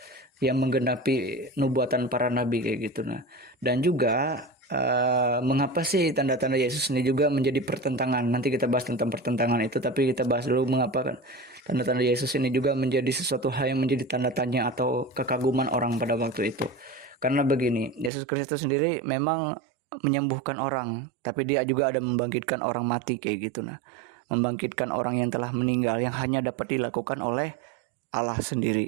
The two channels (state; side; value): drops out; left; at 18.1 s